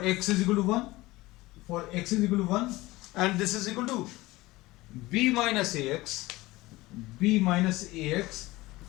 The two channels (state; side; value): quieter; right; 19.6 dB